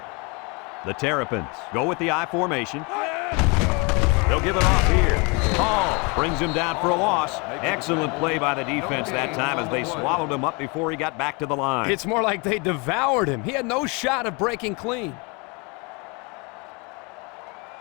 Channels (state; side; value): quieter; right; 30.3 dB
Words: The Terrapins go with the I formation. They'll give it off here. Hall brings him down for a loss. Excellent play by the defense that time as they swallowed him up before he got back to the line. It's more like they devoured him. He had no shot of breaking clean.